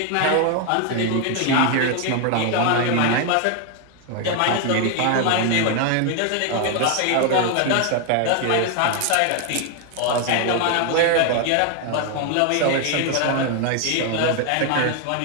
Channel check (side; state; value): both; different; correlation 0.01